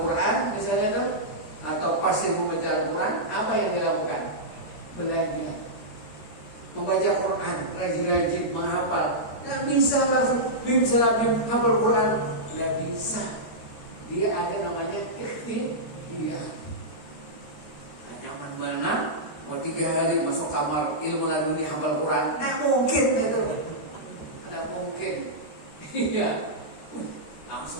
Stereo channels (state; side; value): late; right; 13 ms